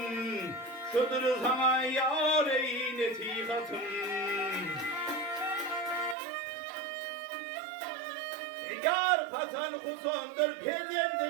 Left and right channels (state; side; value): drops out; left; at 6.2 s